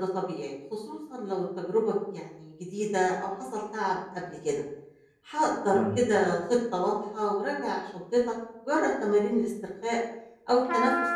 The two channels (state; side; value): identical; both; correlation 1.00